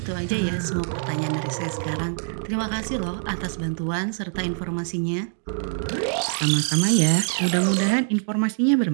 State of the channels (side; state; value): left; silent; 62 dB below the other